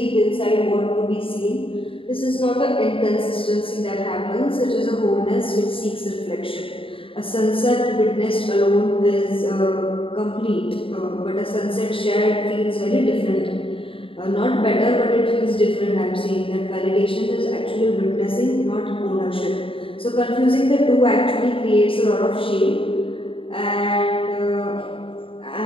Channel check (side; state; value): right; late; 0.26 ms